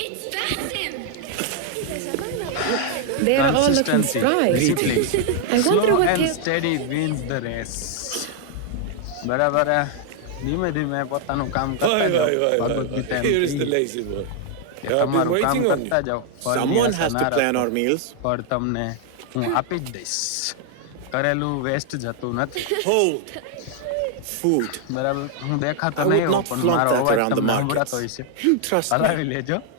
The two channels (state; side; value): different; both; correlation 0.00